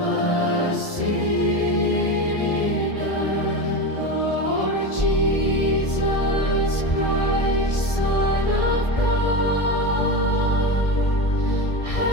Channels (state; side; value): late; right; 1.7 ms